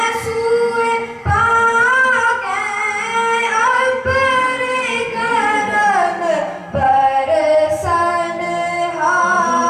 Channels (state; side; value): identical; both; correlation 1.00